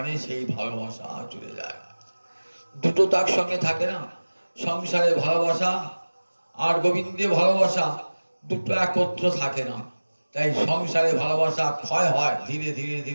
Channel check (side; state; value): both; inverted; correlation -1.00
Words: সেই ভালোবাসা চলে যায়। দুটো তার সঙ্গে থাকে না, সংসারে ভালোবাসা আর গোবিন্দে ভালোবাসা, দুটো একত্র থাকে না। তাই সংসারে ভালোবাসা ক্ষয় হয়, ধীরে ধীরে